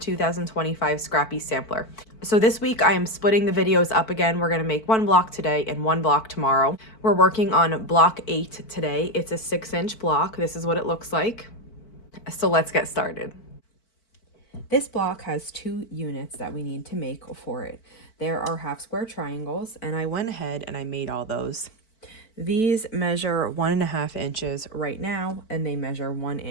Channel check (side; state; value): right; late; 4.5 ms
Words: Scrappy Sampler. So this week I am splitting the videos up again. We're going to make one block today and one block tomorrow. We're working on block 8 today. It's a 6-inch block. This is what it looks like. So let's get started. This block has 2 units that we need to make for it. There are half square triangles, and I went ahead and I made all those. These measure 1.5 inches right now, and they measure 1